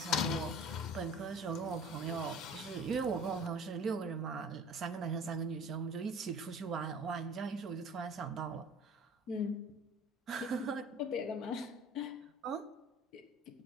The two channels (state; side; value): normal; both; correlation 0.45